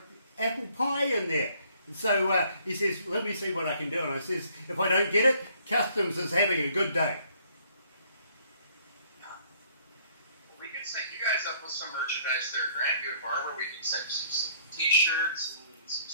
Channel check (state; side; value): inverted; both; correlation -0.62